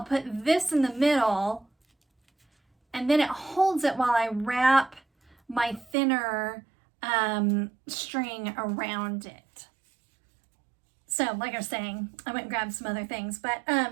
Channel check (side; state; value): left; drops out; at 6.0 s